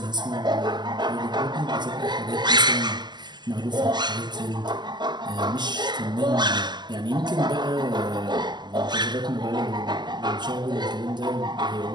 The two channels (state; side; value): late; left; 0.21 ms